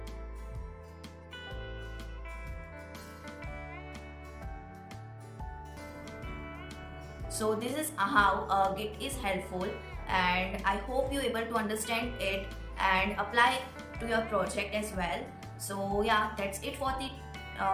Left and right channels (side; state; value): both; identical; correlation 1.00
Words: So this is how Git is helpful, and I hope you able to understand it and apply to your project as well. So yeah, that's it for the